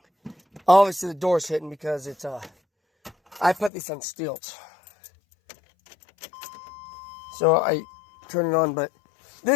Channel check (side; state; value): right; drops out; at 3.7 s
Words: Obviously the door's hitting because it's I put this on stilts. So I turn it on, but